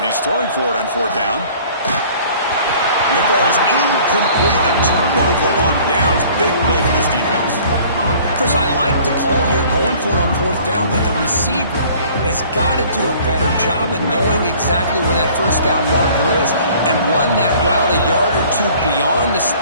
he's throwing for it on fourth down. And it falls incomplete. A turnover on downs. Big play for this defense. Chris, I like the call here going for it on fourth down, but the receiver has got to do a better job of knowing exactly where that first down marker is and run that route a yard or two beyond the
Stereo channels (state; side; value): inverted; both; correlation -0.52